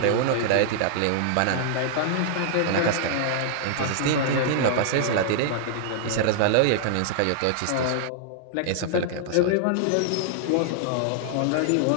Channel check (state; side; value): different; both; correlation -0.01